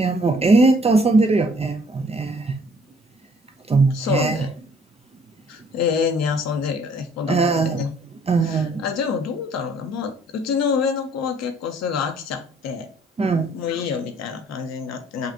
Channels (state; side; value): normal; both; correlation 0.60